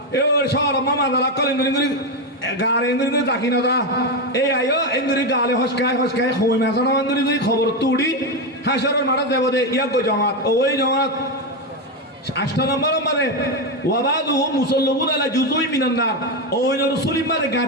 এ সর মাদালা কলে নরি গারে নরি তাকি না দা এই আয়ো এন্দরি গালে হসকায় হই মাছনা নরি খবর তো উড়ি হাসরের মারা দেব দে ইয়া কই জামাত ওই জামাত 8 নম্বর মানে ওয়াবাদুহুম মুসাল্লাবুন আলা জুজুই মিনান নার ওই রাসূলি মারে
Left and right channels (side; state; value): both; normal; correlation 0.10